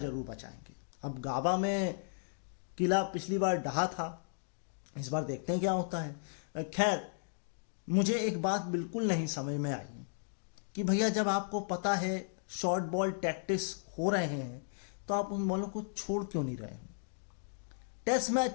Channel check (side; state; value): right; silent; digital silence